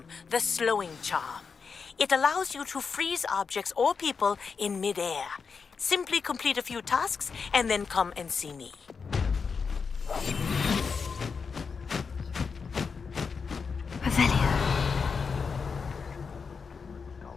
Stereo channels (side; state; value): right; quieter; 5.4 dB